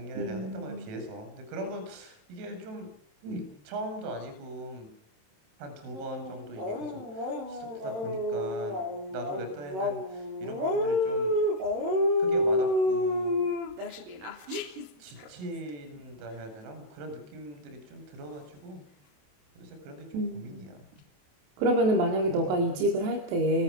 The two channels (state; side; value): late; left; 27 ms